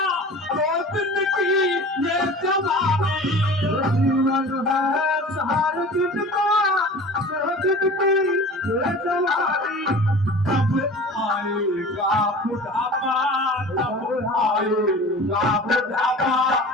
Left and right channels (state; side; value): normal; both; correlation 0.39